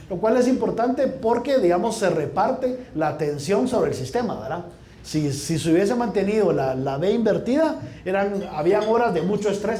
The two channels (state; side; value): identical; both; correlation 1.00